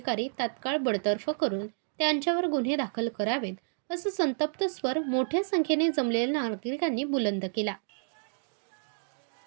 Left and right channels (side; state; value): left; silent; digital silence